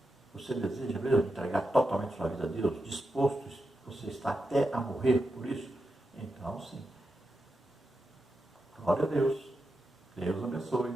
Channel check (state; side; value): normal; both; correlation 0.88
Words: Você deseja mesmo entregar totalmente sua vida a Deus? Disposto, você está até a morrer por isso? Então, sim. Glória a Deus. Deus abençoe.